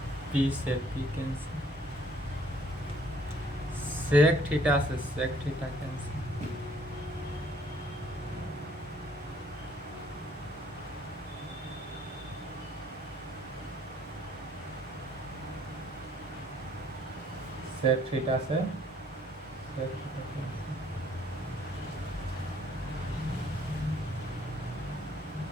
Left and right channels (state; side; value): normal; both; correlation 0.62